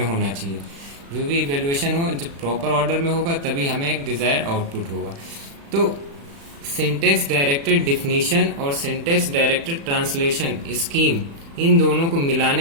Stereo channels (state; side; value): late; left; 36 ms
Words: होना चाहिए। जो भी इवेल्युएशन हो जब प्रॉपर ऑर्डर में होगा तभी हमें एक डिजायर्ड आउटपुट होगा। तो सिंटैक्स डायरेक्टेड डिफिनीशन और सिंटैक्स डायरेक्टेड ट्रांसलेशन स्कीम, इन दोनों को